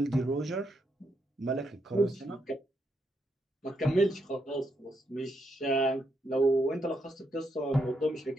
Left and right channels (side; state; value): both; normal; correlation 0.79